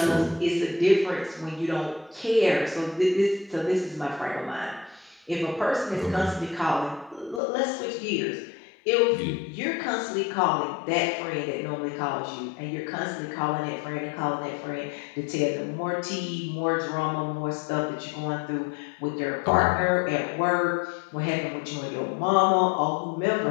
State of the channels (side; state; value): right; drops out; at 7.4 s